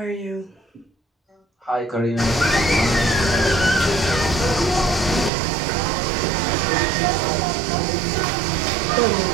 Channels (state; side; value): drops out; left; at 5.3 s